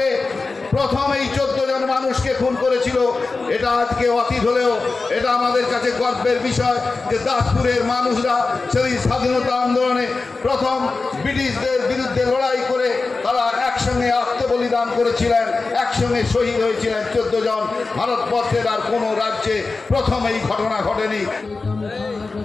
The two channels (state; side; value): quieter; right; 3.9 dB